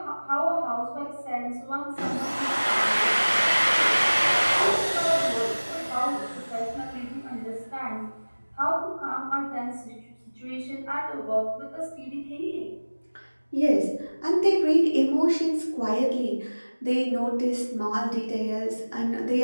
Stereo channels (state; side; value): inverted; both; correlation -1.00